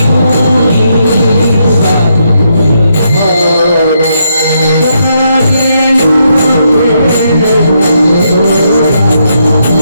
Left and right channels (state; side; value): inverted; both; correlation -0.78